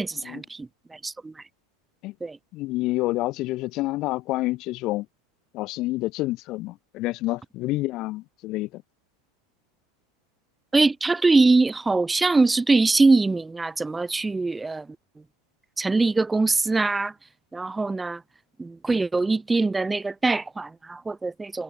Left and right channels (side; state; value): both; normal; correlation 0.86